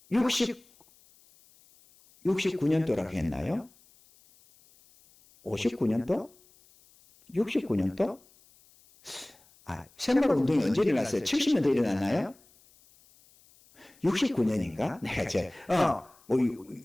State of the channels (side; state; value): left; noise; hiss, 29 dB below the sound